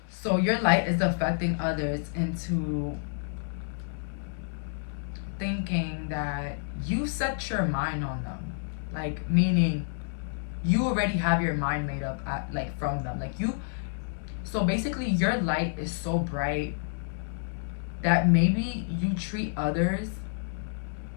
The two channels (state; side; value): silent; right; 58 dB below the other